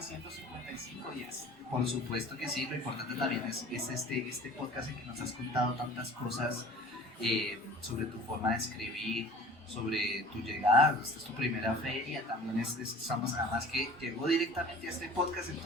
155 días. Por supuesto que sí, lo importante también es este podcast en que nos has contado tantas cosas sobre tu forma de escribir, sobre tu llegada. Esta es tu primera feria, también estamos, además que llegó directamente a este podcast, él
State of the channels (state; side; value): normal; both; correlation 0.45